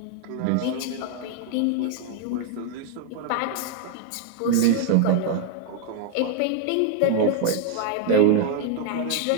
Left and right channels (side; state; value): both; different; correlation 0.00